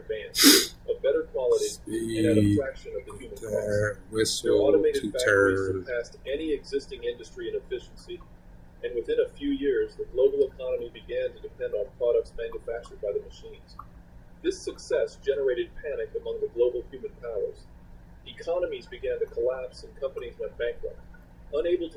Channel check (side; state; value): both; identical; correlation 1.00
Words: of better quality, and at a fraction of the human cost. Whistle to turn. Surpassed any existing industry in efficiency, and within a few years, the global economy began to depend on products manufactured by the machines. This success generated panic among the global human powers. Economies began to collapse and companies went bankrupt, unable